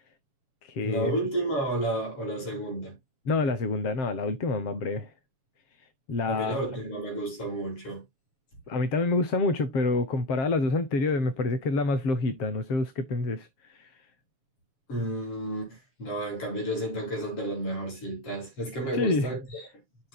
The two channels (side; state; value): right; late; 7.1 ms